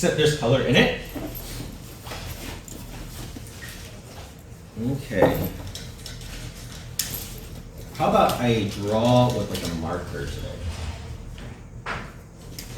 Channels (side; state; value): both; identical; correlation 1.00